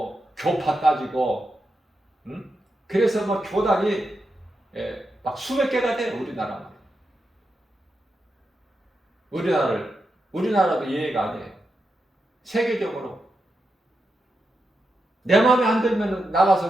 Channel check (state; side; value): normal; both; correlation 0.87